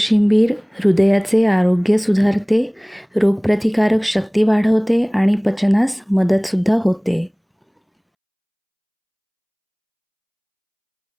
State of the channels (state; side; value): identical; both; correlation 1.00